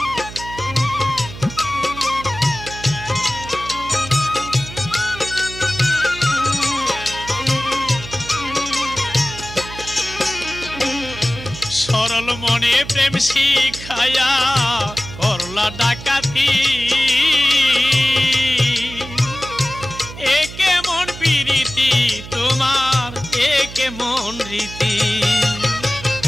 সরল মনে প্রেম শিখায়া করলা ডাকাতি একে মন প্রীতি তোমার একে মন রীতি।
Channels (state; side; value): noise; right; hum, 13 dB below the sound